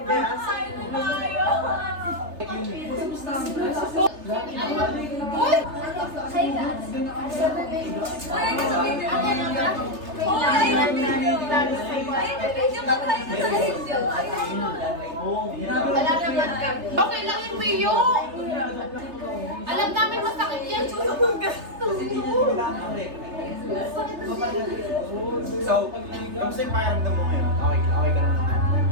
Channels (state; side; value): late; left; 3.3 ms